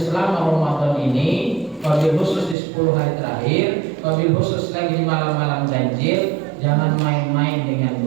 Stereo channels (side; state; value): left; drops out; at 2.6 s